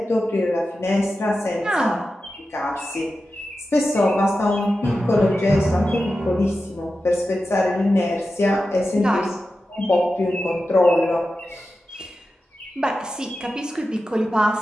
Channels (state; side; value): normal; both; correlation 0.92